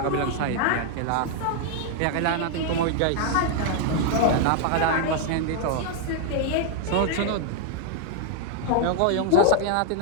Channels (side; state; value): both; different; correlation 0.00